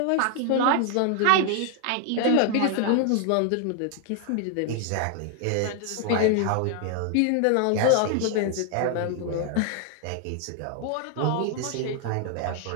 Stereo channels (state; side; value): different; both; correlation 0.00